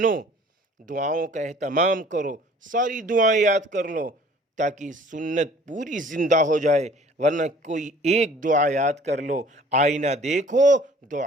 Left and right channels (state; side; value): normal; both; correlation 0.52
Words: دعاؤں کا اہتمام کرو، ساری دعائیں یاد کر لو تاکہ سنت پوری زندہ ہو جائے، ورنہ کوئی ایک دعا یاد کر لو، آئینہ دیکھو،